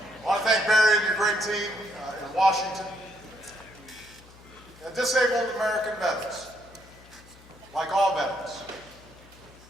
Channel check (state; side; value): noise; left; hum, 23 dB below the sound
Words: I want to thank Barry and your great team in Washington. And disabled American veterans, like all veterans,